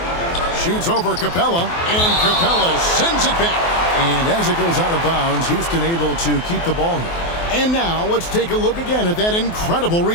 Shoots over Capella, and Capella sends it back. And as it goes out of bounds, Houston able to keep the ball here. And now let's take a look again at that incredible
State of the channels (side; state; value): right; late; 24 ms